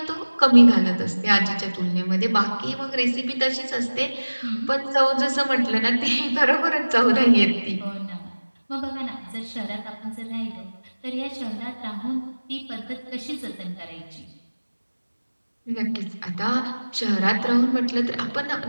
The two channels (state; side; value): inverted; both; correlation -1.00